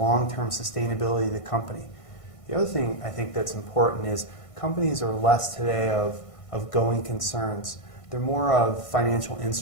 sustainability of the company. The other thing I think that's important is companies are less today of going concerns. They're more of financial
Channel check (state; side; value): late; right; 1.5 ms